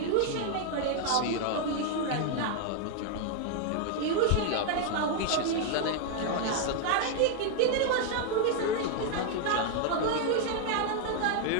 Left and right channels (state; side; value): different; both; correlation 0.00